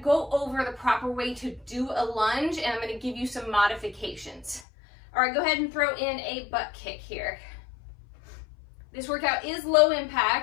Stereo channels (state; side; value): drops out; right; at 4.6 s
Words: go over the proper way to do a lunge, and I'm gonna give you some modifications. All right, go ahead and throw in a butt kick here. This workout is low